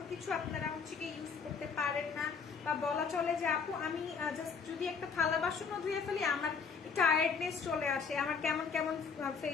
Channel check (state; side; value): quieter; right; 5.8 dB